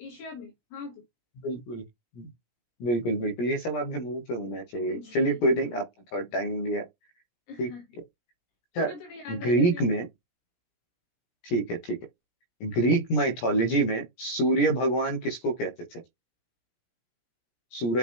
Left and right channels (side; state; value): right; late; 17 ms